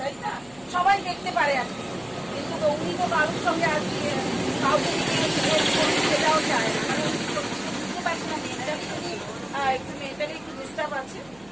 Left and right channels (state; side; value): noise; left; hum, 27 dB below the sound